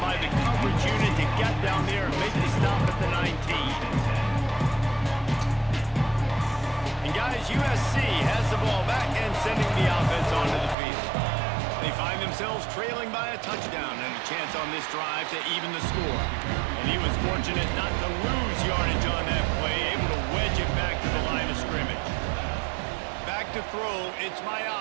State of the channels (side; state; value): left; drops out; at 10.8 s